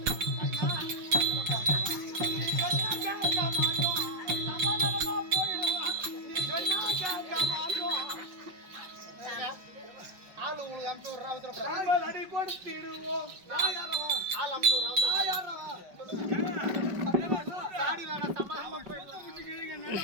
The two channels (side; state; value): left; late; 5.6 ms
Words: ஆளு உங்களுக்கு அமுச்சு விடுறா அடி கொடுத்திடுவோம் ஆள் அமுச்சு விடுறா சாடி வேணா சமாதானமா